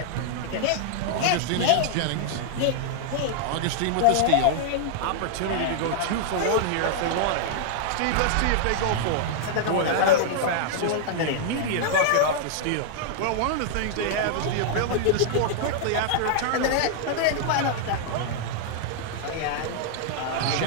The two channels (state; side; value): different; both; correlation -0.01